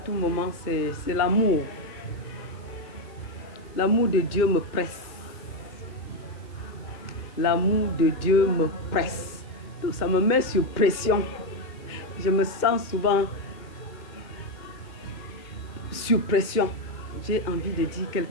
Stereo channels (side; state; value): right; late; 2.1 ms